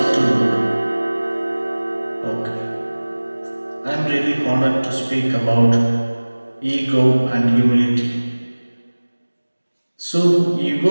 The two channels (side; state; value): both; inverted; correlation -1.00